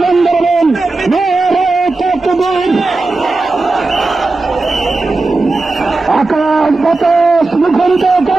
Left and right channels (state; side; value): quieter; left; 3.4 dB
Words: দেবেন, নারায়ে তাকবীর। আকাশ বাতাস মুখরিত